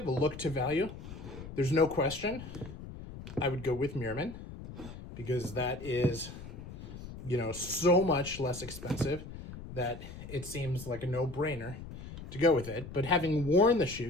a look to value, there's no question I would go with Meerman because that is, you know, so much less expensive that it seems like a no-brainer to go with it. But having worn the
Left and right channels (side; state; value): left; noise; rumble, 12 dB below the sound